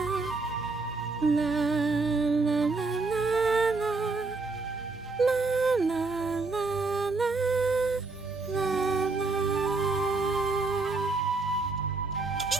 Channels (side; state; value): left; quieter; 3.7 dB